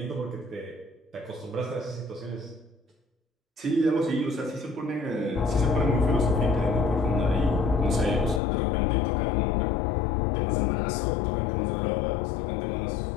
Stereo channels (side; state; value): right; drops out; at 8.4 s